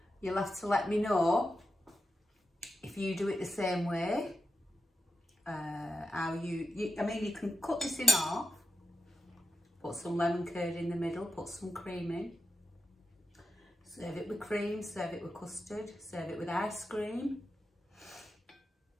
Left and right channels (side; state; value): both; normal; correlation 0.89